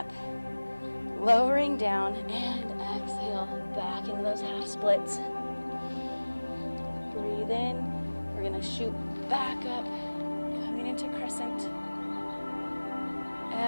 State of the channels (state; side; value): inverted; both; correlation -1.00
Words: lowering down, and exhale, back into those half splits. Breathe in. We're going to shoot back up, coming into crescent.